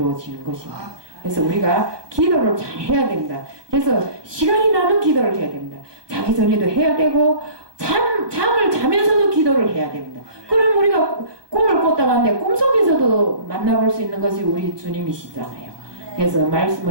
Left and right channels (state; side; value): late; left; 1.2 ms